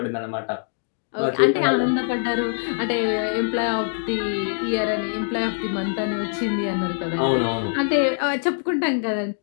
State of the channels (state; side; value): silent; right; digital silence